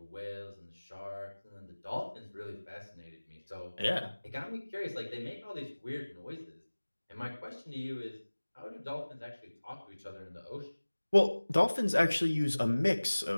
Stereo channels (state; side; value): inverted; both; correlation -1.00